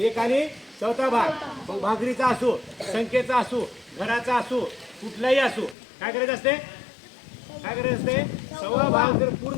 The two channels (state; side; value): drops out; right; at 5.8 s